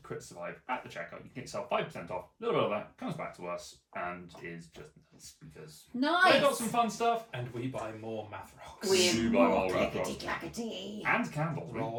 at the checkout. You can get yourself 5% off. A little bit of that comes back to us and is just nice because Nice. they got some fun stuff. And we buy more math rocks. We buy more math rocks. clickety-clackety. And candles.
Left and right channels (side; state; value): both; identical; correlation 1.00